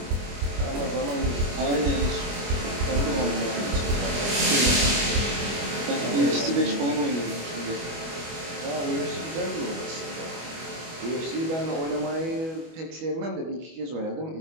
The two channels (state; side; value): late; left; 25 ms